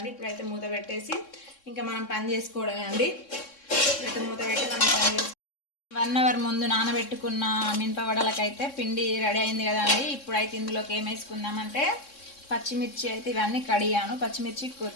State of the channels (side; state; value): right; late; 3.6 ms